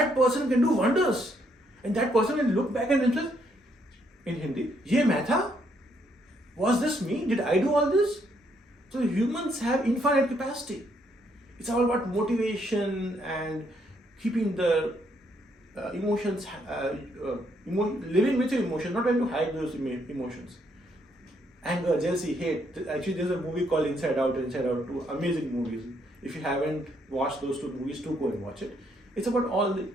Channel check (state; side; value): normal; both; correlation 0.72